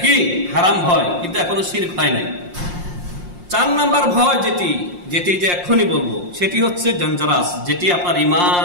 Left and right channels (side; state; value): left; late; 5.6 ms